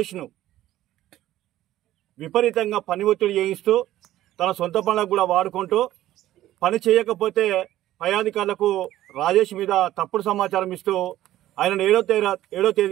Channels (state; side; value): quieter; left; 14.1 dB